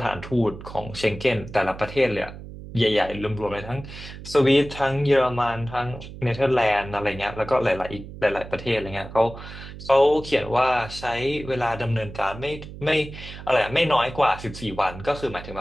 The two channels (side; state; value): right; noise; hum, 13 dB below the sound